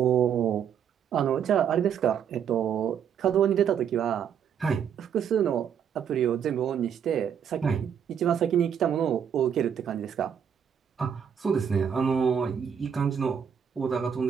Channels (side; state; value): left; quieter; 8.1 dB